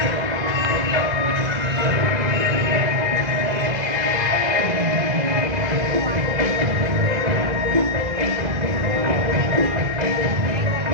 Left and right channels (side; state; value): left; late; 1.7 ms